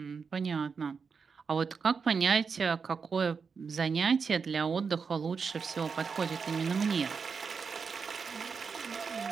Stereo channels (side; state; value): left; quieter; 5.5 dB